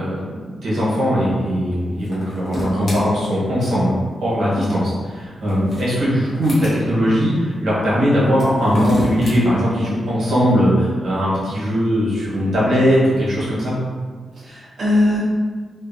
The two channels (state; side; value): normal; both; correlation 0.85